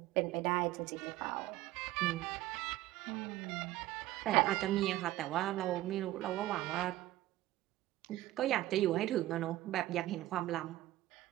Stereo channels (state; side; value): quieter; left; 15.9 dB